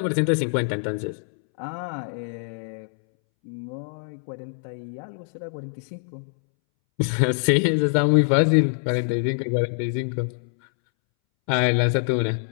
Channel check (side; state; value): right; silent; 62 dB below the other